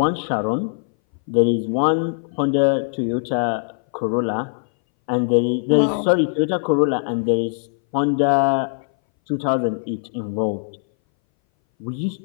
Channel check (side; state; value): right; silent; 61 dB below the other